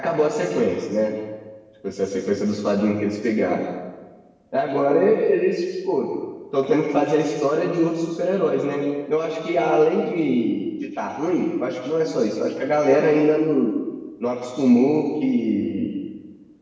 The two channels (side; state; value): both; identical; correlation 1.00